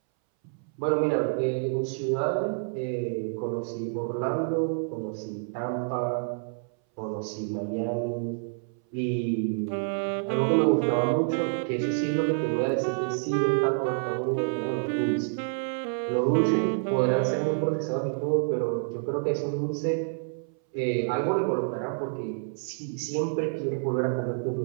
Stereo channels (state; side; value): silent; left; 59 dB below the other